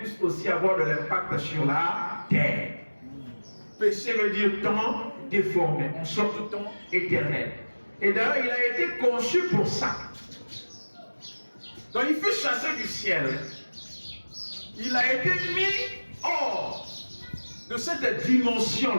aussi avoir de l'impact sur la terre. Péché veut dire temps déformé, en sorte de temps éternel. Et d'ailleurs, il a été conçu pour ça. Donc il fut chassé du ciel. Il a été mis hors de cette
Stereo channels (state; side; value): inverted; both; correlation -1.00